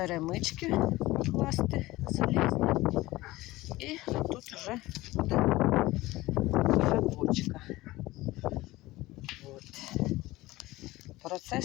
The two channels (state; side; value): quieter; right; 18.7 dB